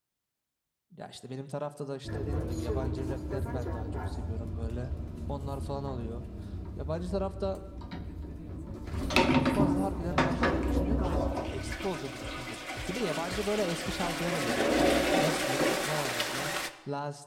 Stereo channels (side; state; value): both; identical; correlation 1.00